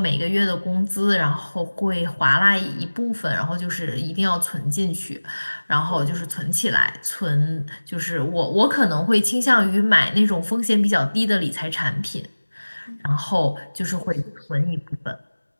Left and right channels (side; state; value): both; inverted; correlation -1.00